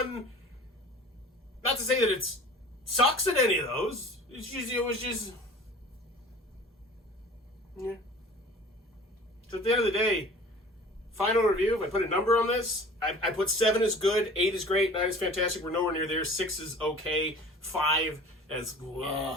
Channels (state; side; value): normal; both; correlation 0.43